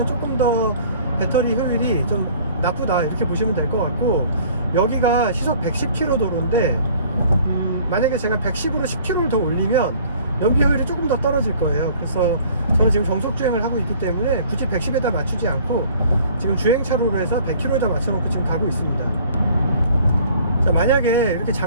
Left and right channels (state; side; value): inverted; both; correlation -0.53